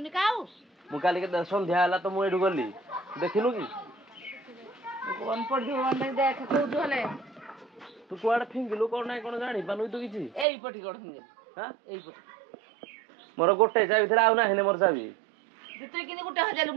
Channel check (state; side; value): drops out; left; at 10.5 s